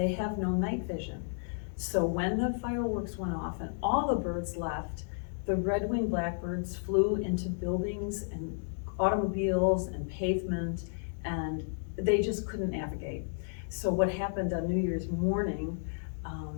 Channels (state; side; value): silent; right; 56 dB below the other